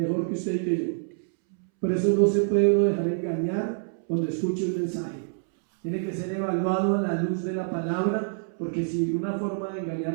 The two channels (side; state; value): left; silent; 61 dB below the other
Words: que usted y que yo. Por eso no se puede uno dejar engañar cuando escuche un mensaje. Tiene que ser evaluado a la luz de la palabra, porque si una forma de